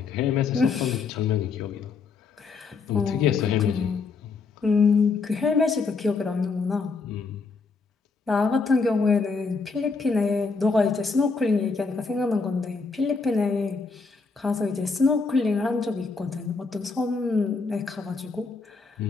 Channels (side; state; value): right; quieter; 4.5 dB